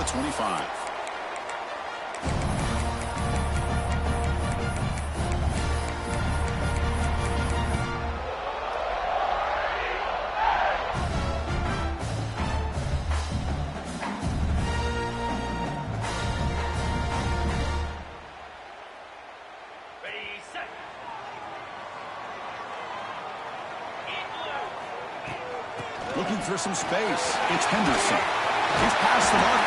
25. Looking for some space. It's Henderson. He's past the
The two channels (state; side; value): identical; both; correlation 1.00